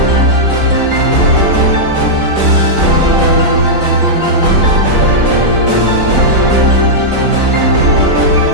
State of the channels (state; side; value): late; left; 4.0 ms